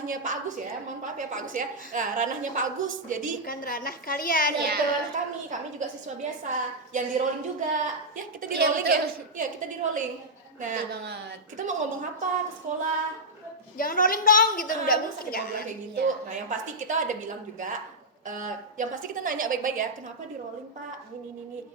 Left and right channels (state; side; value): normal; both; correlation -0.05